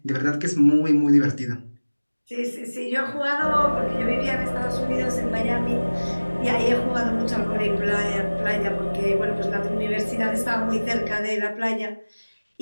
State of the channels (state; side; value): inverted; both; correlation -1.00